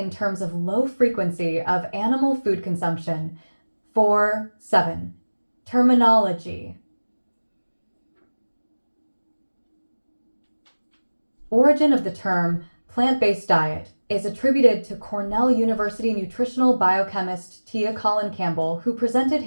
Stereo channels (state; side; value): inverted; both; correlation -1.00